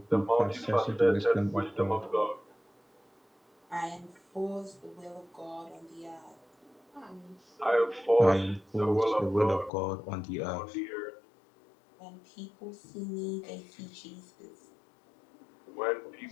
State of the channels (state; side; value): drops out; right; at 9.7 s